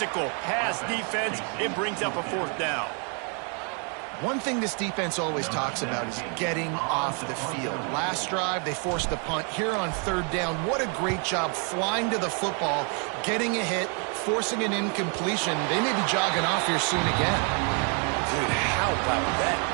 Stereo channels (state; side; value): quieter; left; 38.2 dB